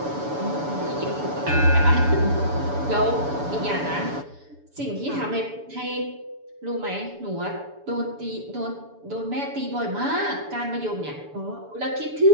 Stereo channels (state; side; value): late; left; 7.0 ms